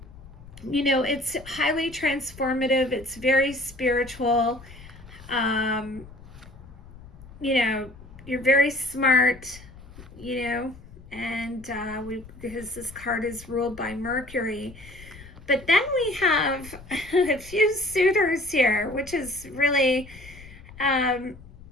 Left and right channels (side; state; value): left; noise; rumble, 19 dB below the sound